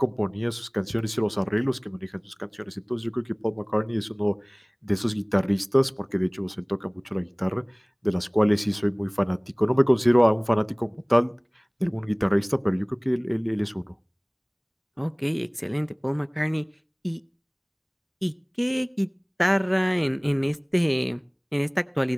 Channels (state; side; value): identical; both; correlation 1.00